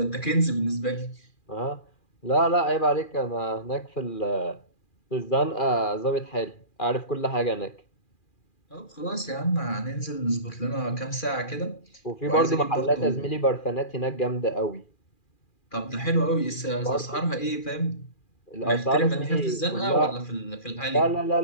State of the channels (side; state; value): right; late; 2.4 ms